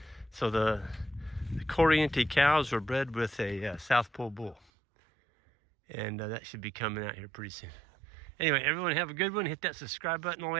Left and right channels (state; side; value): drops out; left; at 4.6 s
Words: So the Corriente cows were bred with a South Pole bull. And that should be coming out here pretty soon. Anyway, everyone have a good one. Hit that subscribe button on the